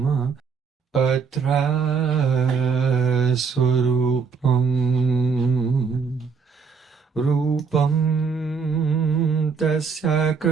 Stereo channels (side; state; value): left; quieter; 5.6 dB